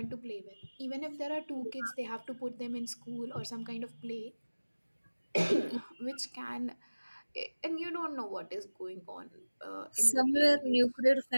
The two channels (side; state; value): both; inverted; correlation -1.00